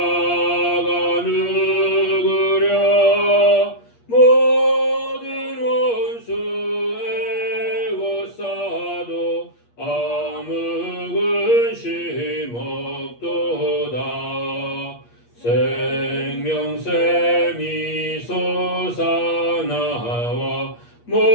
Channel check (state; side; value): late; right; 8.5 ms